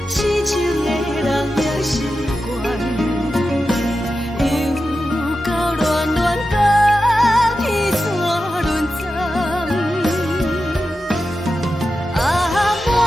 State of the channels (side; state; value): both; normal; correlation 0.91